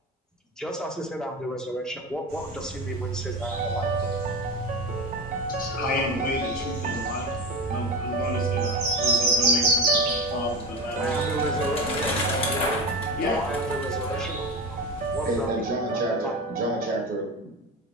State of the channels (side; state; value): both; normal; correlation 0.24